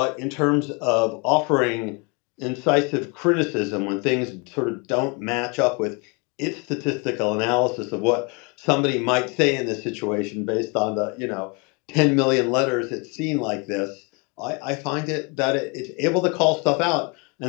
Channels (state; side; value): quieter; right; 31.2 dB